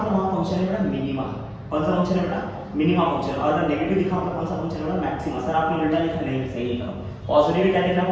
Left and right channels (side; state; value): both; identical; correlation 1.00